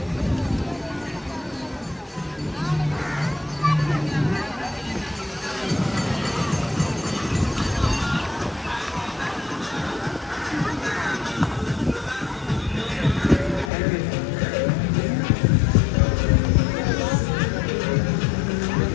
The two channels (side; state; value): right; drops out; at 13.7 s